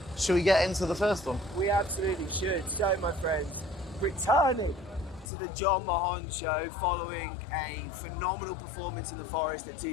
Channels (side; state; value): right; drops out; at 5.3 s